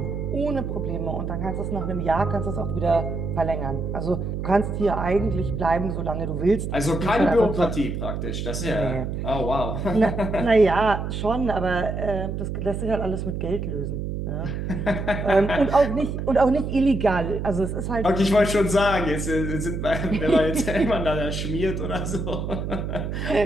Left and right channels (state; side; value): noise; right; hum, 4 dB below the sound